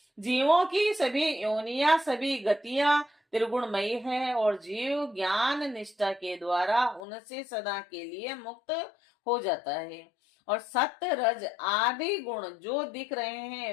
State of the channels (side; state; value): right; drops out; at 7.0 s